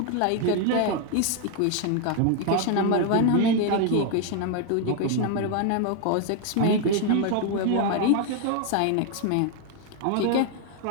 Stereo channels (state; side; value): different; both; correlation 0.01